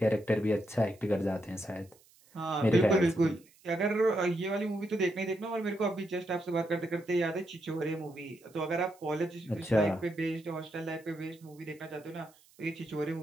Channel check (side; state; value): right; noise; hiss, 29 dB below the sound